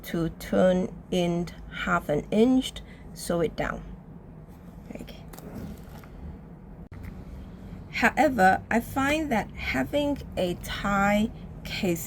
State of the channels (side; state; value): both; identical; correlation 1.00